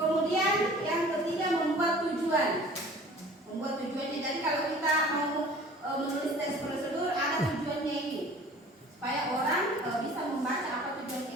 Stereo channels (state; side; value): normal; both; correlation 0.46